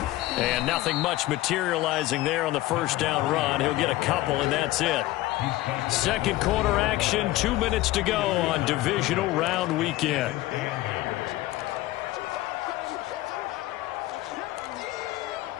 And nothing much materializing there on the first down run. He'll get a couple, and that's it. Second quarter action, 2 minutes to go on divisional round weekend.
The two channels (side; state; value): right; quieter; 17.1 dB